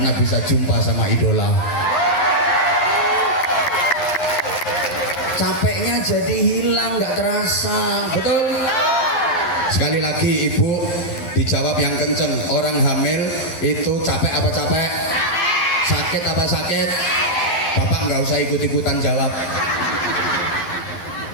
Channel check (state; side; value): late; right; 11 ms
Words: bisa jumpa sama idola. Capeknya jadi hilang, nggak terasa, betul? Sekali lagi ibu dijawab yang kenceng. Orang hamil itu capek apa capek? Sakit apa sakit? Bapak nggak usah ikut-ikutan jawab.